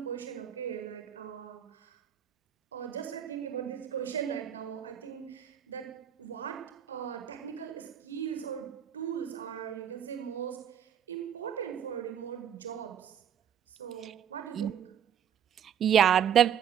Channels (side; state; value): left; quieter; 9.1 dB